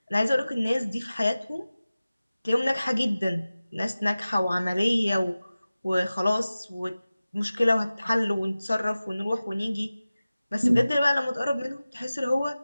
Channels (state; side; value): inverted; both; correlation -0.97